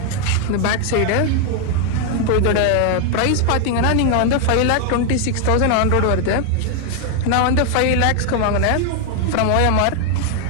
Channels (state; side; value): different; both; correlation 0.00